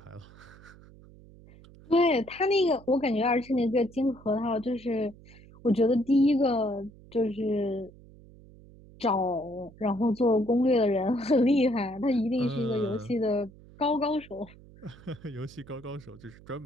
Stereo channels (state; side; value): noise; right; hum, 22 dB below the sound